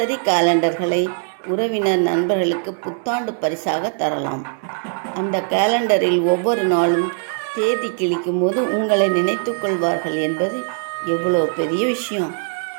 கேலண்டர்களை உறவினர், நண்பர்களுக்கு புத்தாண்டு பரிசாக தரலாம். அந்த கேலண்டரில் ஒவ்வொரு நாளும் தேதி கிழிக்கும் போது உங்களை நினைத்து கொள்வார்கள் என்பது எவ்வளோ பெரிய விஷயம்.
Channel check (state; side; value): silent; left; 66 dB below the other